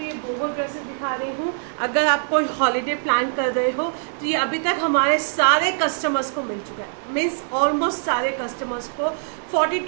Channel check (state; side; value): silent; left; digital silence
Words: ये बोहो ड्रेसेस दिखा रही हूँ। अगर आप कोई हॉलीडे प्लान कर रहे हो तो ये अभी तक हमारे सारे कस्टमर्स को मिल चुका है, मीन्स ऑलमोस्ट सारे कस्टमर्स को।